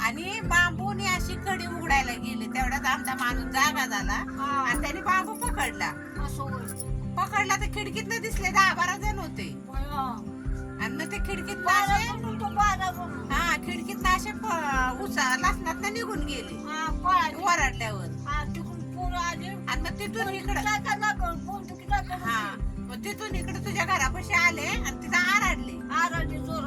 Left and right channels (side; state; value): both; identical; correlation 1.00